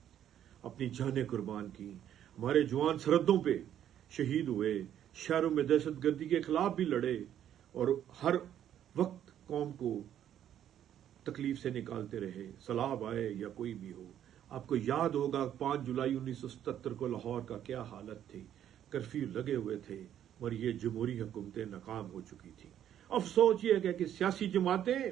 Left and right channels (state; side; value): quieter; left; 10.5 dB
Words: अपनी जानें कुर्बान की, हमारे जवान सरहदों पे शहीद हुए, शहरों में दहशत गर्दी के खिलाफ भी लड़े और हर वक्त कौम को तकलीफ से निकालते रहे, सैलाब आए या कोई भी हो। आपको याद होगा 5 जुलाई 1977 को लाहौर का क्या हालत थी, कर्फ्यू लगे हुए थे और ये जमहूरी हुकूमतें नाकाम हो चुकी थी। अफसोस ये है कि सियासी जमातें